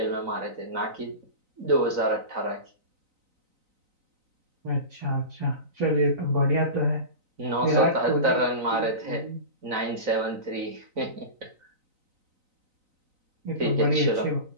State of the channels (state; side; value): late; left; 3.9 ms